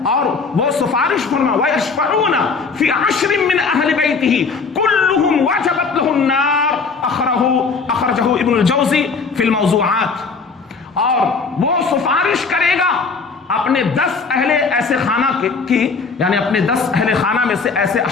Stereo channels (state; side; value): quieter; right; 4.7 dB